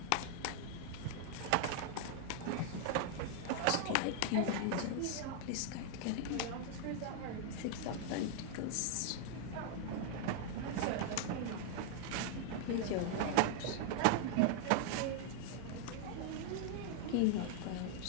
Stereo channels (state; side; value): different; both; correlation 0.00